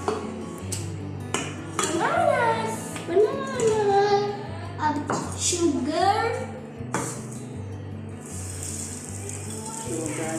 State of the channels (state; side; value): identical; both; correlation 1.00